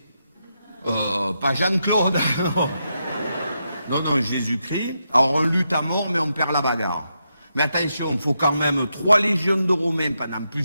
Pas Jean-Claude. Non, non, Jésus-Christ. Alors, on lutte à mort, mais on perd la bagarre. Mais attention, il faut quand même 3 légions de Romains pendant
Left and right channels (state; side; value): inverted; both; correlation -0.84